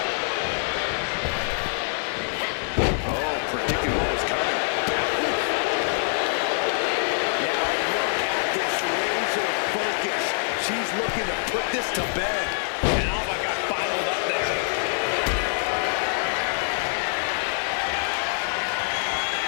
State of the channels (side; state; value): right; silent; 62 dB below the other